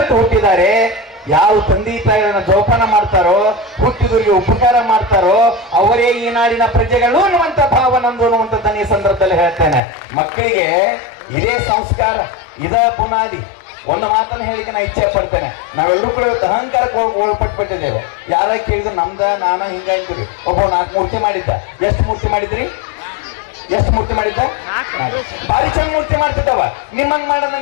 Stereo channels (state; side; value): drops out; right; at 9.8 s